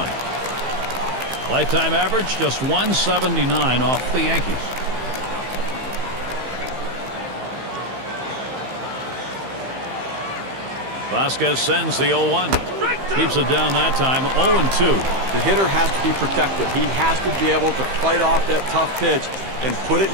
Lifetime average just 179 off the Yankees. Vasquez sends the 0-1. Keeps it down that time. 0-2. The hitter has to be protected. He has to be able to fight off that tough pitch and put it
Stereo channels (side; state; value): left; late; 15 ms